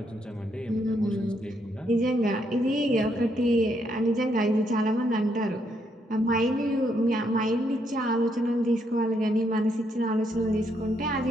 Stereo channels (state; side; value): normal; both; correlation 0.75